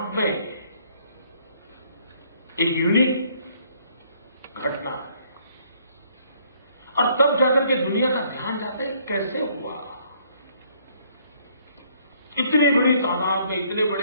में एक यूनिक घटना है और तब जाकर के दुनिया का ध्यान जाता है कैसे हुआ, इतनी बड़ी तादाद में, इतने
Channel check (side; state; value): both; inverted; correlation -0.64